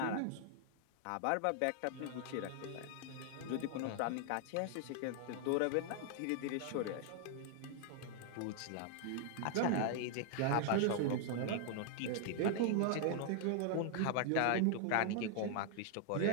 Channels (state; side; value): different; both; correlation 0.00